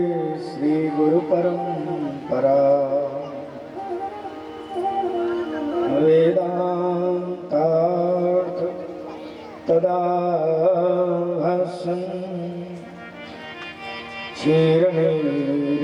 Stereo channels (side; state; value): both; identical; correlation 1.00